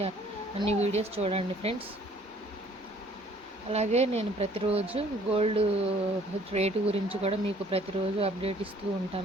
అన్ని వీడియోస్ చూడండి ఫ్రెండ్స్. అలాగే నేను ప్రతిరోజు గోల్డ్ రేటు గురించి కూడా మీకు ప్రతిరోజు అప్డేట్ ఇస్తూ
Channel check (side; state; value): both; normal; correlation 0.58